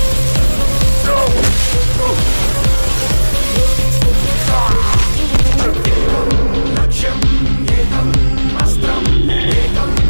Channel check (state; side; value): inverted; both; correlation -1.00